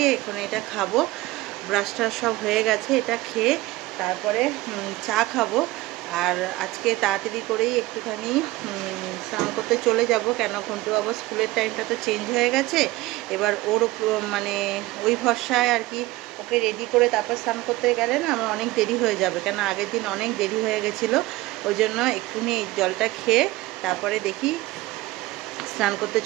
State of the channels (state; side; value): quieter; left; 19.0 dB